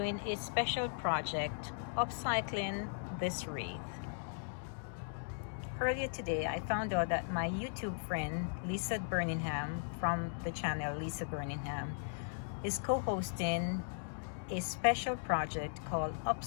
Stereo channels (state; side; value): silent; right; digital silence